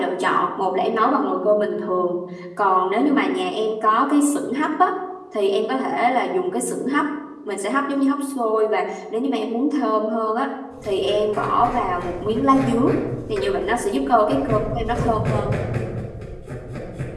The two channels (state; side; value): identical; both; correlation 1.00